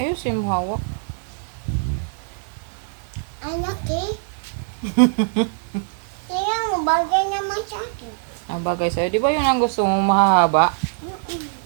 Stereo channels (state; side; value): silent; left; digital silence